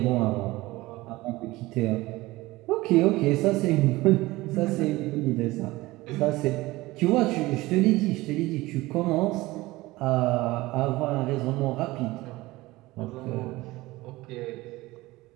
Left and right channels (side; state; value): left; quieter; 19.5 dB